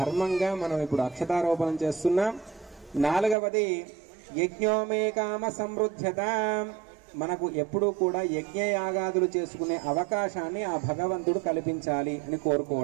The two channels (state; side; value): drops out; left; at 3.4 s